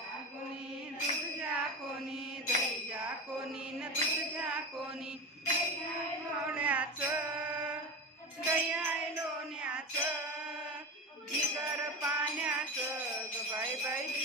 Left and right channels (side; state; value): both; normal; correlation 0.23